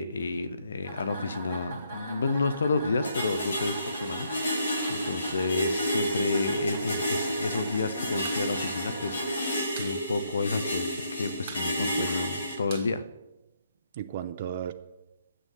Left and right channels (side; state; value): both; inverted; correlation -0.74